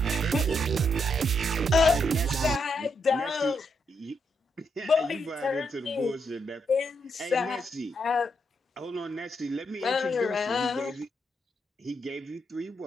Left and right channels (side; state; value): both; normal; correlation 0.79